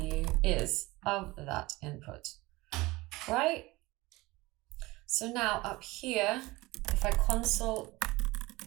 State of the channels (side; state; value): left; quieter; 21.0 dB